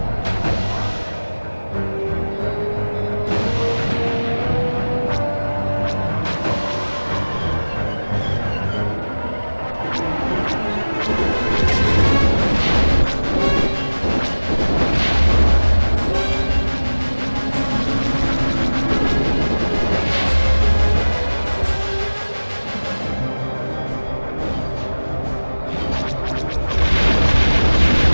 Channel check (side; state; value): both; inverted; correlation -1.00